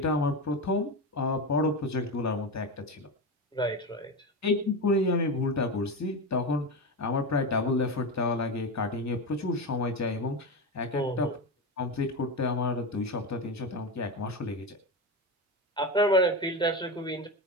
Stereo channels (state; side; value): normal; both; correlation 0.18